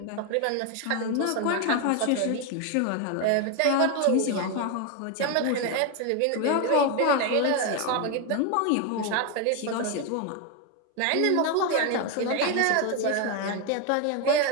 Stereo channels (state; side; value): different; both; correlation 0.01